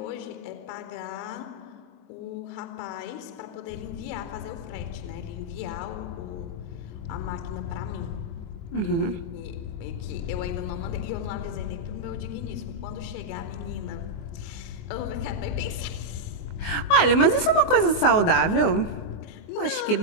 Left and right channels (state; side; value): late; right; 24 ms